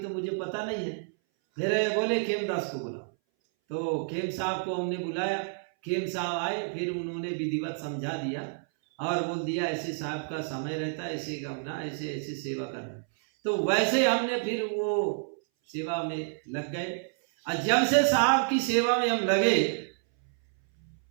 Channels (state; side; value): silent; left; 58 dB below the other